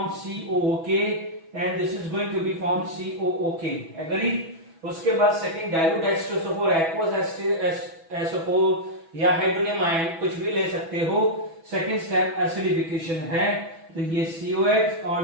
COOK and this is going to be form COOK, agree. उसके बाद सेकंड डाइल्यूट एस्टोसोफोर, एक्वस एस्टोसोफोर या हाइड्रोनियम आयन कुछ भी ले सकते हो। सेकंड स्टेप एसिडिफिकेशन है, तो ये COH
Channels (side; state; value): left; late; 6.1 ms